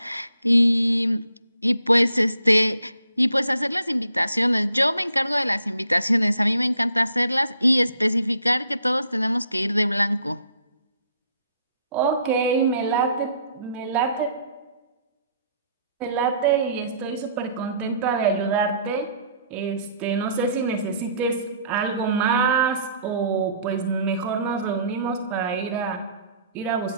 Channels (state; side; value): inverted; both; correlation -0.63